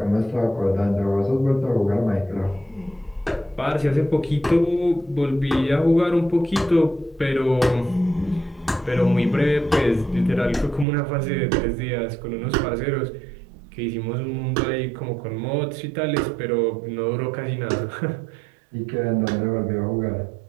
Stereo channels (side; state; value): left; drops out; at 10.9 s